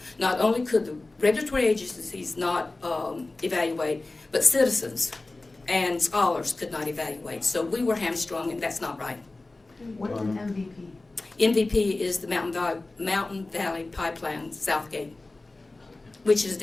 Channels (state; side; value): quieter; right; 3.1 dB